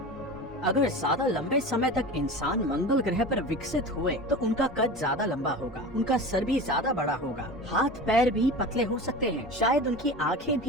अगर ज्यादा लंबे समय तक इंसान मंगल ग्रह पर विकसित हुए तो उनका कद ज्यादा लंबा होगा, उनका सर भी ज्यादा बड़ा होगा, हाथ पैर भी पतले हो सकते हैं, शायद उनकी आंखें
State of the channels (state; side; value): normal; both; correlation 0.32